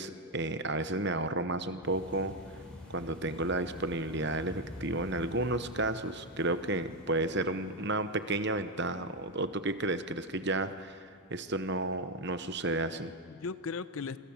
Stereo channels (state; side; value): normal; both; correlation 0.06